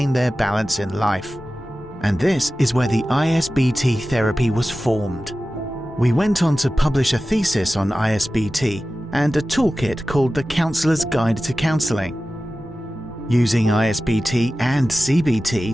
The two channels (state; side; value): normal; both; correlation 0.95